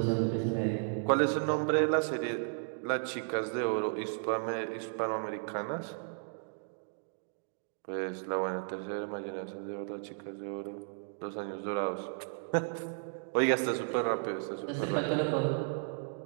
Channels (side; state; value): left; silent; digital silence